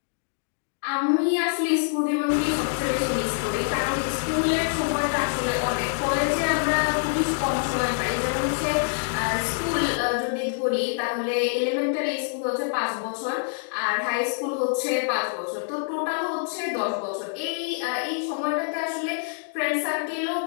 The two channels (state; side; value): silent; right; digital silence